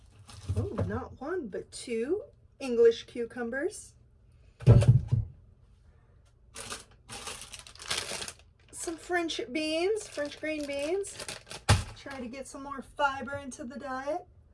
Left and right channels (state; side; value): identical; both; correlation 1.00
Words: oh, not one, but two English cucumbers. Some French beans, French green beans. Try to get some more fiber into the diet.